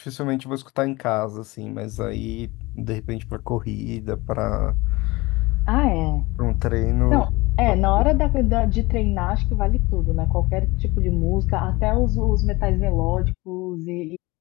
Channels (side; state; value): right; quieter; 22.2 dB